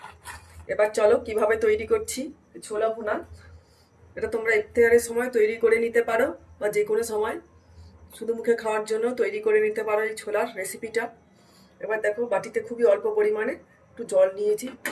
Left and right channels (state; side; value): identical; both; correlation 1.00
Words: এবার চলো কিভাবে তৈরি করছি ছোলা ভুনা। এটা তোমরা ইফতারের সময় তৈরি করে নিতে পারো বা যে কোনো সময় শুধু মুখে খাওয়ার জন্য তৈরি করে নিতে পারো এই ছোলার রেসিপিটা। এবার দেখো বাটিতে খুবই অল্প পরিমাণে একটু জল নিয়েছি,